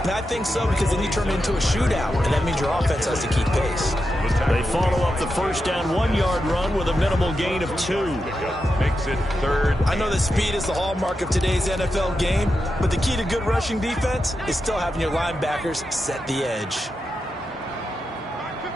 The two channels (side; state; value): both; normal; correlation 0.88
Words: I think so, because then you turn it into a shootout, and that means your offense has to keep pace. They follow up the first down 1-yard run with a minimal gain of 2. Makes it third. I know that speed is the hallmark of today's NFL game, but the key to good rushing defense is still having your linebackers set the edge.